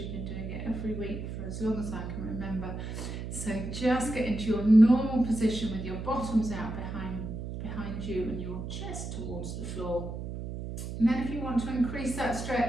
been doing it every week for as long as I can remember. So just get into your normal position with your bottoms out behind you and your chest towards the floor. And then if you want to increase that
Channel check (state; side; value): noise; right; hum, 6 dB below the sound